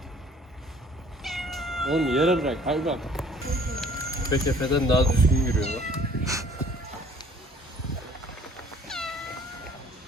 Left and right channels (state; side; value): normal; both; correlation 0.55